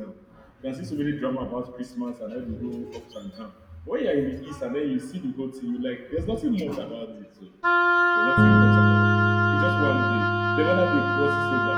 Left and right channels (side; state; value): both; identical; correlation 1.00